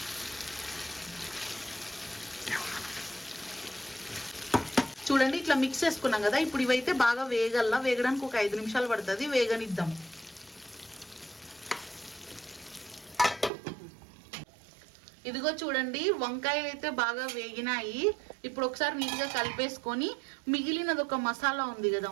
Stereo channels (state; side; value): drops out; left; at 13.5 s